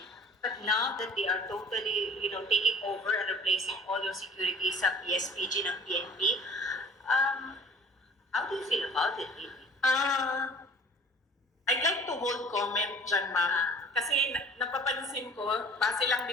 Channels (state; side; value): normal; both; correlation 0.48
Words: But now that they are totally, taking over and replacing all your security sa PSPG ng PNP, how do you feel about it, Amy? I'd like to hold comment dyan, ma'am. Kasi napapansin ko, base lang